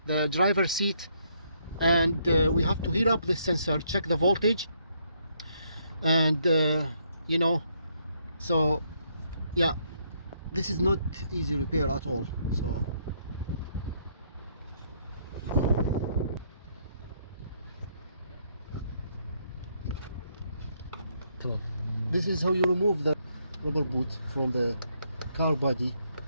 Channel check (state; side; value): inverted; both; correlation -0.72